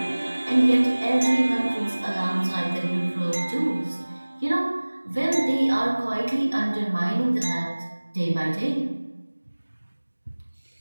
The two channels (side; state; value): both; inverted; correlation -1.00